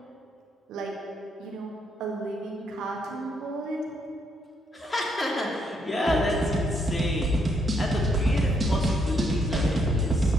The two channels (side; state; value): both; normal; correlation 0.74